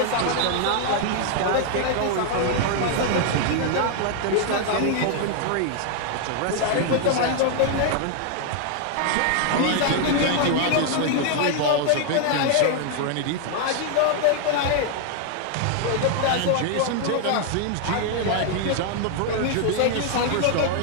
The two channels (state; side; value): different; both; correlation 0.00